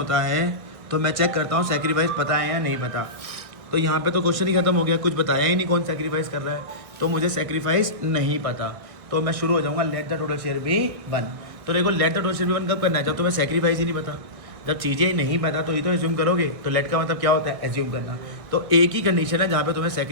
है तो मैं चेक करता हूँ सेक्रीफाइस पता है या नहीं पता। तो यहाँ पे तो क्वेश्चन ही खत्म हो गया, कुछ बताया ही नहीं कौन सेक्रीफाइस कर रहा है, तो मुझे सेक्रीफाइस नहीं पता। तो मैं शुरू हो जाऊँगा let the total share be 1। तो देखो let the total share be 1 कब करना है? जब तुम्हें सेक्रीफाइस ही नहीं पता। जब चीज़ें ही नहीं पता तो ये तो एज्यूम करोगे। तो लेट का मतलब क्या होता है? एज्यूम करना। तो एक ही कंडीशन है जहाँ पे तुम्हें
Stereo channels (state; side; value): late; left; 1.6 ms